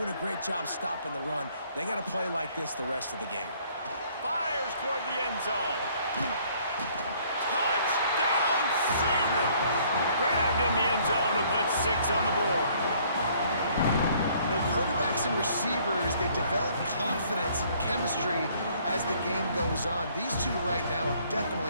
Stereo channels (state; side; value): inverted; both; correlation -0.61